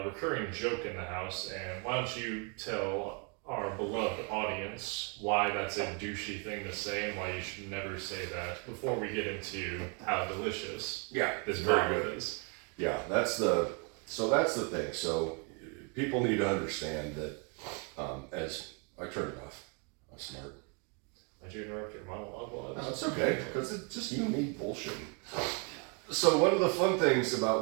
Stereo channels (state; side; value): quieter; left; 35.0 dB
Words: recurring joke in the house, and why don't you tell our beloved audience why that's a douchey thing to say and why you should never say that before we get into how delicious this bourbon is. Yeah, that's the thing. So people need to understand that as I turn it off, I'm smart. Did you interrupt your monologue while I was? No, it's okay, because it's just you and me bullshitting. So one of the fun things